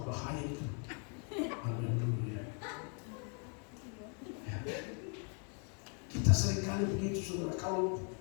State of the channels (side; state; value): right; quieter; 40.0 dB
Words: bahaya itu. Haleluya. Ya. Kita seringkali begitu, saudara. Kalau